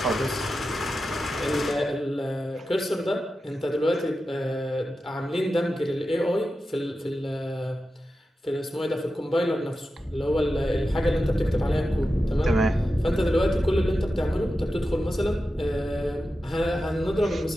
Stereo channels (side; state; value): both; normal; correlation 0.92